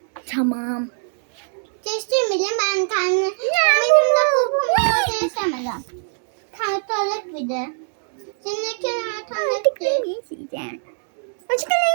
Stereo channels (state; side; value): silent; left; digital silence